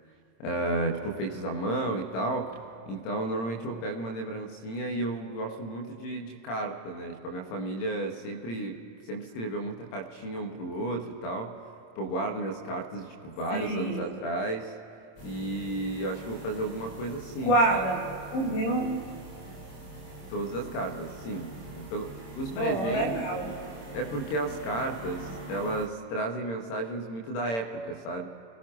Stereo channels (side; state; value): right; late; 26 ms